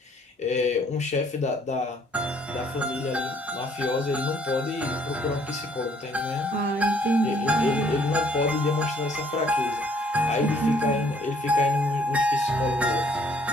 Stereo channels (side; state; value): both; normal; correlation 0.62